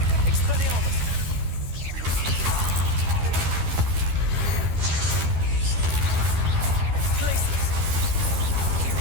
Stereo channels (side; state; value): left; late; 12 ms